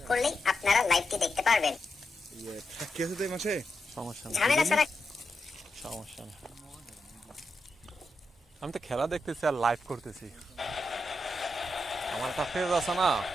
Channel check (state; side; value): normal; both; correlation 0.86